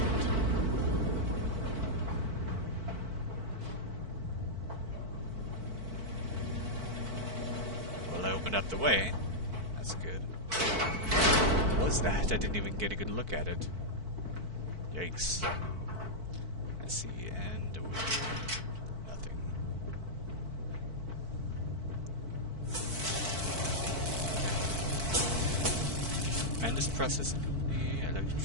Well, I opened up the way. That's good. What was that? I didn't even get a good look at it. Yikes. I see, and over here, nothing. Mandus Processing Company,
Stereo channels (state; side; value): late; left; 4.5 ms